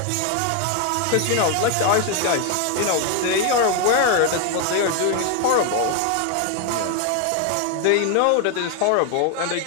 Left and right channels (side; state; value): both; different; correlation 0.01